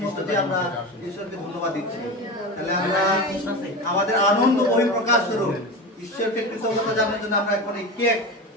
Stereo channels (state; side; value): normal; both; correlation 0.25